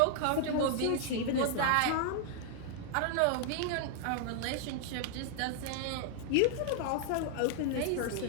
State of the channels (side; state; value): both; different; correlation 0.00